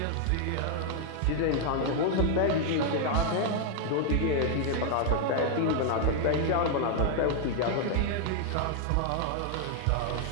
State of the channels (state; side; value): different; both; correlation 0.00